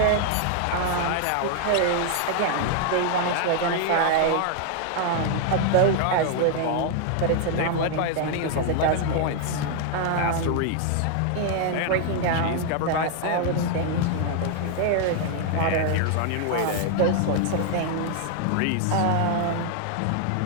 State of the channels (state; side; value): different; both; correlation 0.00